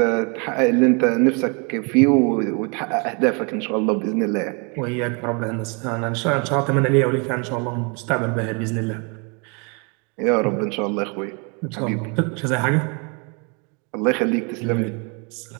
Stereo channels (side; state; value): left; quieter; 33.5 dB